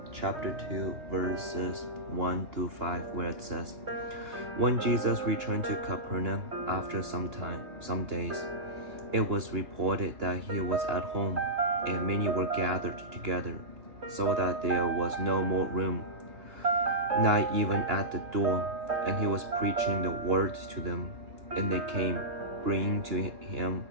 chapter 2, verses 1 through 5, where it says, When Jesus returned to Capernaum after some days, it was reported that he was at home, and many were gathered together, so that there was no more room, not even at the door, and he was preaching the word to them. And they came, bringing to him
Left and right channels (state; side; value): late; left; 2.9 ms